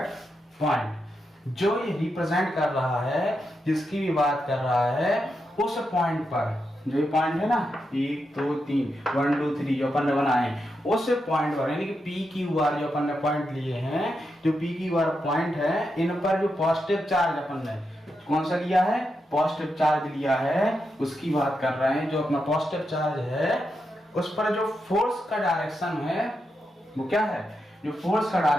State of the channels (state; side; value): normal; both; correlation 0.85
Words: point. जो ये रिप्रेजेंट कर रहा है, जिसकी भी बात कर रहा है, उस पॉइंट पर, जो ये पॉइंट है ना 1 2 3 1 2 3 जो अपन ने बनाए, उस पॉइंट पर, यानी कि पी क्यू आर जो अपन ने पॉइंट लिए हैं, जो पी क्यू आर पॉइंट है, इन पर जो पॉजिटिव चार्ज अपन ने कौन सा लिया है, पॉजिटिव चार्ज लिया है, उसकी बात कर रहे हैं। जो अपना पॉजिटिव चार्ज है उस पर जो फोर्स का डायरेक्शन है वो क्या है, जो फोर्स का